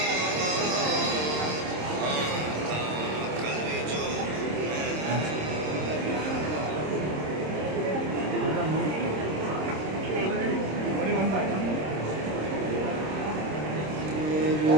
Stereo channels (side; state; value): left; late; 26 ms